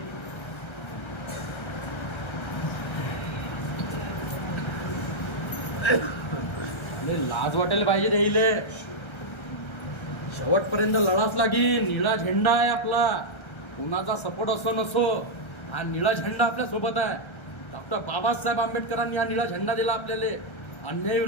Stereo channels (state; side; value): late; right; 1.3 ms